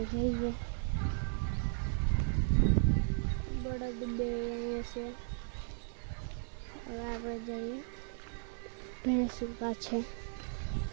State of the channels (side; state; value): left; silent; 54 dB below the other